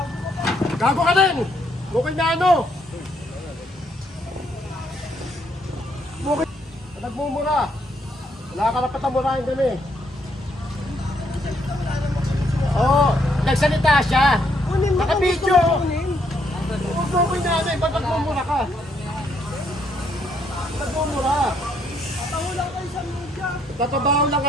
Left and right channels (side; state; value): both; normal; correlation 0.72